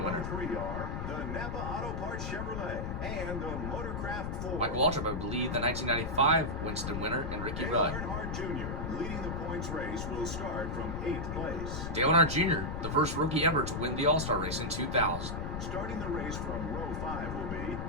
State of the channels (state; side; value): noise; left; rumble, 4 dB below the sound